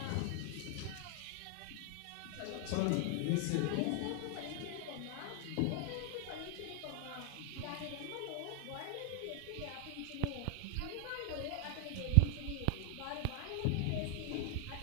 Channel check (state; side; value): different; both; correlation 0.00